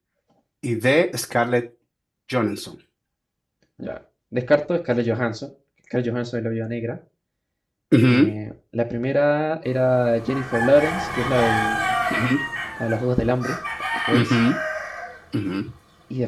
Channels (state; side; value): identical; both; correlation 1.00